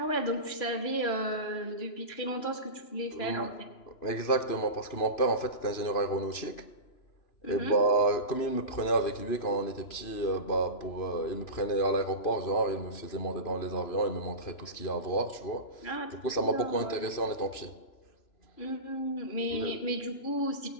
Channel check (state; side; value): late; right; 2.9 ms